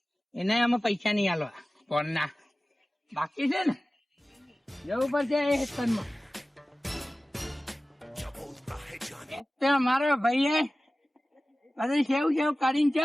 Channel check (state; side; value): normal; both; correlation 0.97